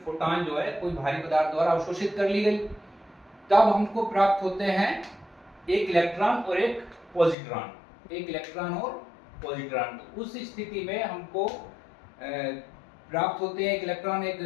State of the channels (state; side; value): drops out; right; at 7.4 s